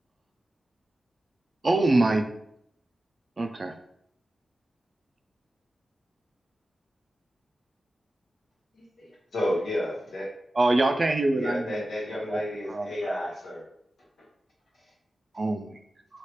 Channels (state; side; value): normal; both; correlation 0.94